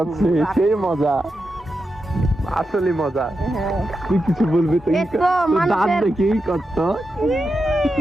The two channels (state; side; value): normal; both; correlation 0.88